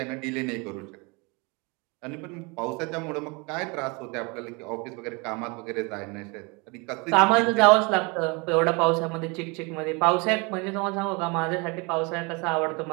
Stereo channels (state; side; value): quieter; left; 29.1 dB